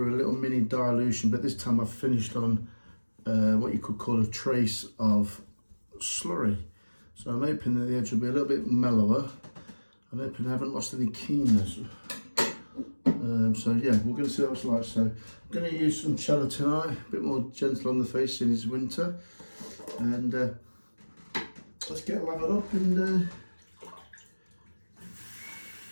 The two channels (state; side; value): inverted; both; correlation -1.00